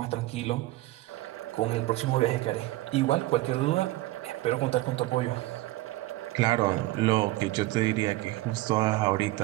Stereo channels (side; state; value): left; quieter; 18.1 dB